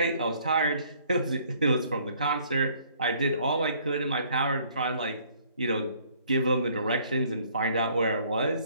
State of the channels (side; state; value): both; inverted; correlation -0.61